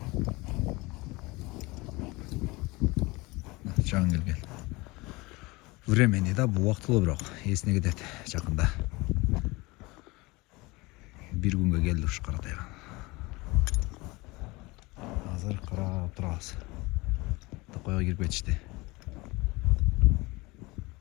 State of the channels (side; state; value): right; quieter; 23.3 dB